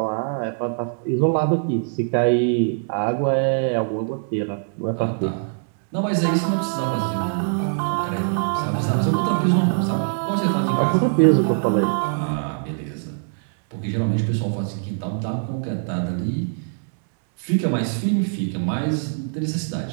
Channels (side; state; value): left; silent; digital silence